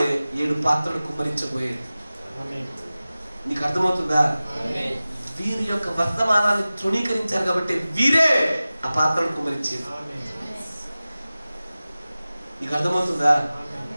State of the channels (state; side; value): inverted; both; correlation -0.97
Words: 7 పాత్రలు కుమ్మరించబోయేది. నీకు అర్థమవుతుందా? వీరి యొక్క వర్తమానాన్ని తృణీకరించారు కాబట్టి వీరే ఆ పాత్రలు కుమ్మరించేది. నీకు అర్థమవుతుందా?